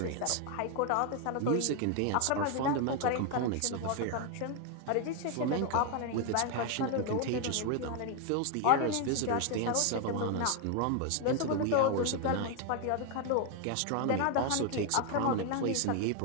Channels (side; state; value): both; different; correlation 0.01